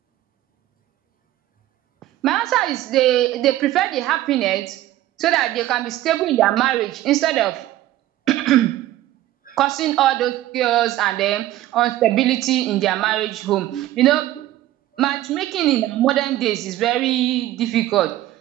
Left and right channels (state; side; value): quieter; left; 14.6 dB